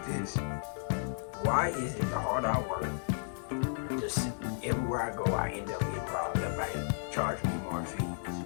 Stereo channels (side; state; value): right; silent; 55 dB below the other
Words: this: why is it the harder I work, just everywhere I go, I end up getting robbed? The bank charge me more fees.